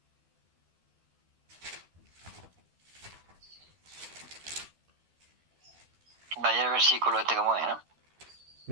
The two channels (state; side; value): late; left; 12 ms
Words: Vaya el versículo este como es, ¿no?